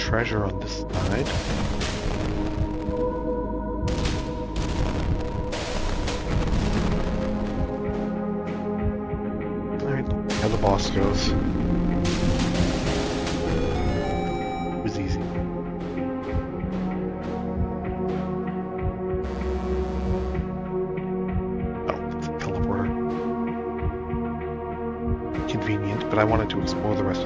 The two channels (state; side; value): identical; both; correlation 1.00